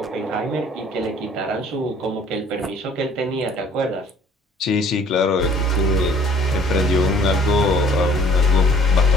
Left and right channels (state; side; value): normal; both; correlation 0.55